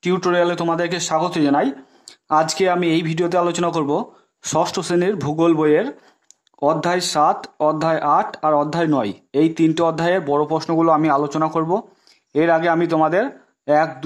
টিউটোরিয়ালে তোমাদেরকে স্বাগত জানাই। আজকে আমি এই ভিডিওতে আলোচনা করব ষষ্ঠ শ্রেণীর ভূগোল বইয়ের অধ্যায় 7, অধ্যায় 8 আর অধ্যায় 9 এই তিনটে অধ্যায়ের বড় প্রশ্নগুলো আমি আলোচনা করব। এর আগে আমি তোমাদের 1,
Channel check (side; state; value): both; identical; correlation 1.00